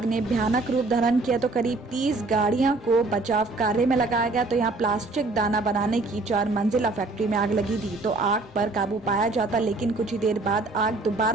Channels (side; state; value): left; quieter; 3.3 dB